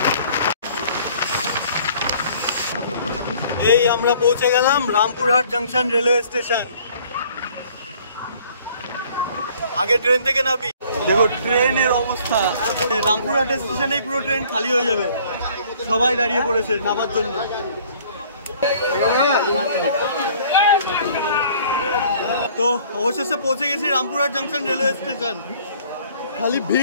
এই আমরা পৌঁছে গেলাম রামপুরহাট জাংশন রেলওয়ে স্টেশন। আগে ট্রেন থেকে নামি, দেখো ট্রেনের অবস্থা। রামপুরহাট স্টেশনেই পুরো ট্রেন খালি হয়ে যাবে, সবাই দাঁড়িয়ে পড়েছে নামার জন্য। তো অবশেষে পৌঁছে গেছি রামপুরহাট জাংশন রেলওয়ে স্টেশন। খালি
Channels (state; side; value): inverted; both; correlation -0.55